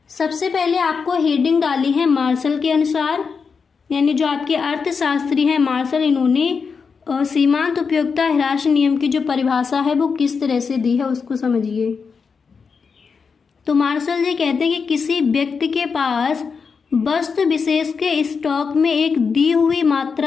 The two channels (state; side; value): quieter; right; 5.5 dB